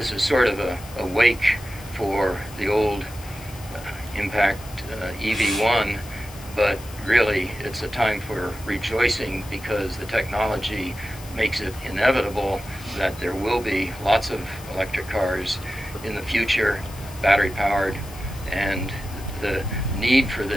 is sort of a wake for the old impact EV1, but really it's a time for rejoicing because the technology makes it inevitable that there will be lots of electric cars in the future, battery powered, and the need for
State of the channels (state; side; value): noise; left; hiss, 18 dB below the sound